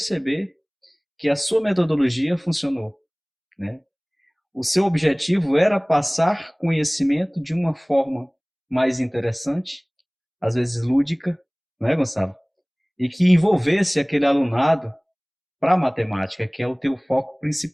que a sua metodologia funcionou, né? O seu objetivo era passar conhecimento de uma forma mais interessante, às vezes lúdica, não é, Gonçalo? E que envolvesse aquele alunado para a matemática, que é o teu foco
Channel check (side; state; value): both; identical; correlation 1.00